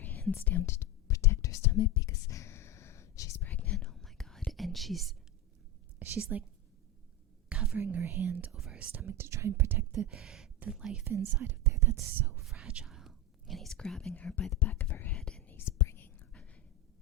hands down to protect her stomach because she's pregnant. Oh my God. And she's like covering her hand over her stomach to try and protect the life inside of there that's so fragile. And he's grabbing her by the back of her head, and he's bringing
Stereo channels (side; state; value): both; normal; correlation 0.16